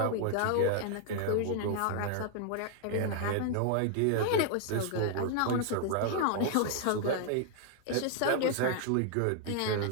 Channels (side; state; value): both; different; correlation 0.00